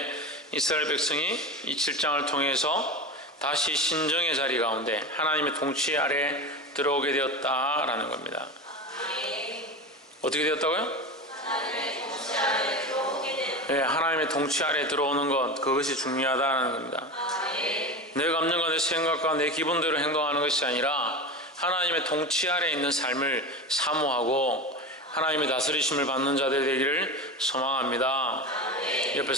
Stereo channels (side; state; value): both; normal; correlation 0.26